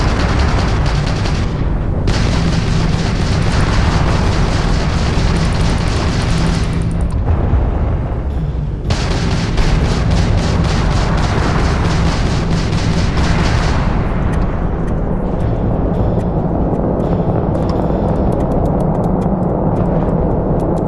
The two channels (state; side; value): identical; both; correlation 1.00